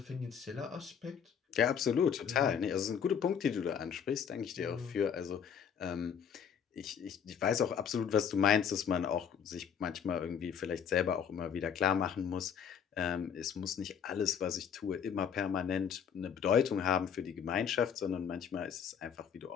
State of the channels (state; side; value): quieter; right; 7.8 dB